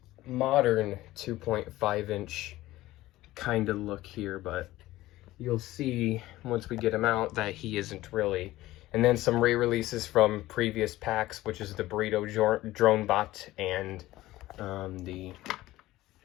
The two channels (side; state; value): right; quieter; 16.8 dB